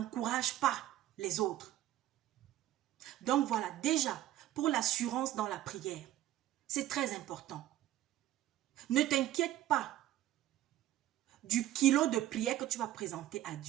pas les autres. Donc voilà, déjà, pour l'assurance dans la prière, c'est très important. Ne t'inquiète pas du kilo de prière que tu vas présenter à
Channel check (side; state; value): left; quieter; 13.5 dB